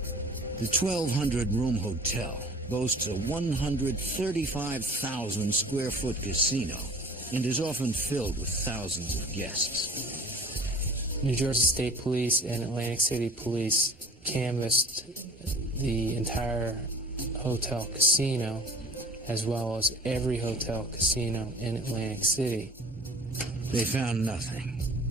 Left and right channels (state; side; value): normal; both; correlation 0.45